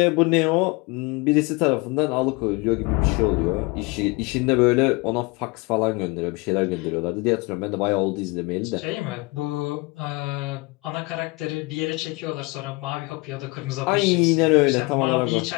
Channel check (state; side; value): quieter; right; 25.6 dB